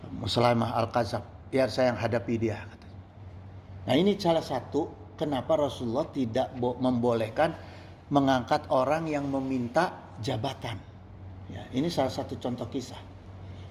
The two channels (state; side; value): identical; both; correlation 1.00